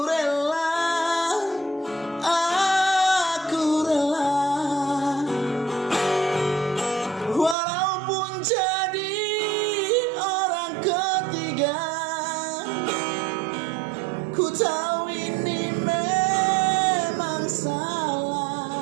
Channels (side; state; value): left; drops out; at 7.6 s